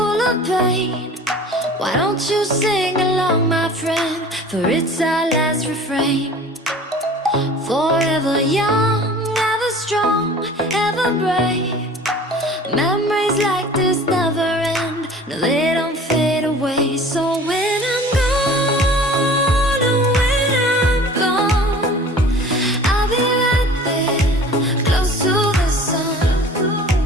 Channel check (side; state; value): both; normal; correlation 0.44